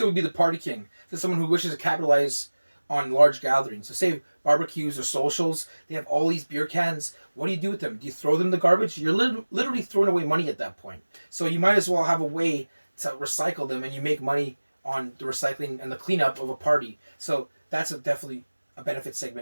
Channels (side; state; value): both; inverted; correlation -1.00